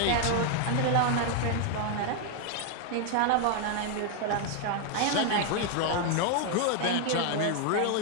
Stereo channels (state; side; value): different; both; correlation 0.01